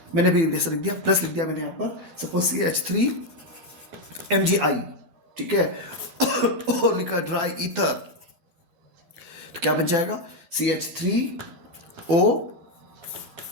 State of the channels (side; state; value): left; late; 12 ms